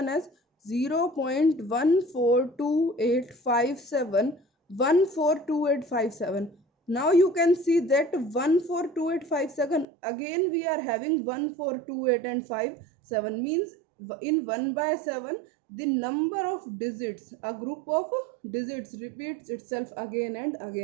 as 0.142857, 142857. Now you can see that 142857, again we are having 1428 and 57, means in 1 by 7 the number of digits, a group of digits repeats itself again and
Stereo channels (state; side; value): drops out; left; at 9.9 s